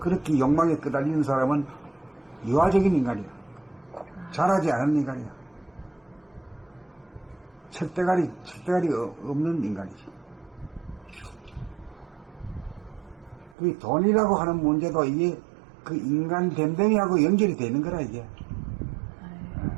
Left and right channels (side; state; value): left; drops out; at 13.6 s